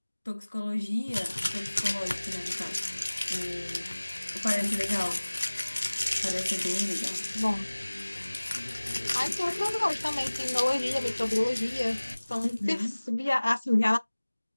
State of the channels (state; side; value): inverted; both; correlation -1.00